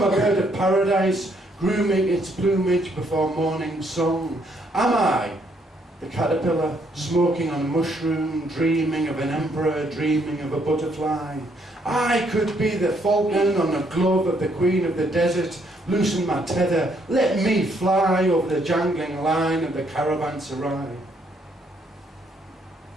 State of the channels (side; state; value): both; normal; correlation 0.70